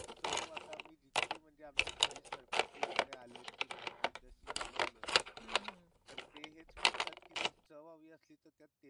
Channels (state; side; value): identical; both; correlation 1.00